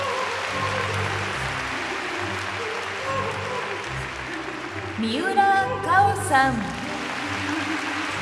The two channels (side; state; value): both; identical; correlation 1.00